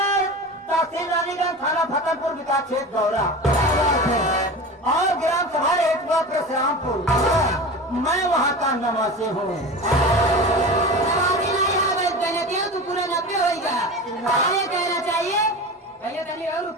तहसील रानीगंज थाना फतेहपुर विकास क्षेत्र गौरा और ग्राम सभा हेटुआ परशुरामपुर। मैं वहाँ का नवासी हूँ। तो पूरा 90 होगा। ये कहना चाहिए भैया तनी और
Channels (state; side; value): normal; both; correlation 0.31